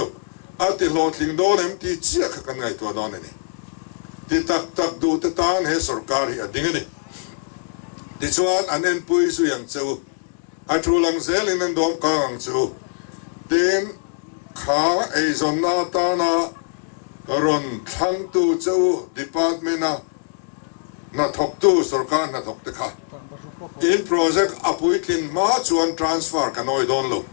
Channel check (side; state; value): right; silent; digital silence